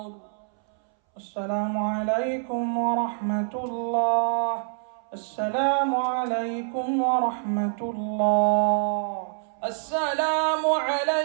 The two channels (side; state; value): left; silent; 61 dB below the other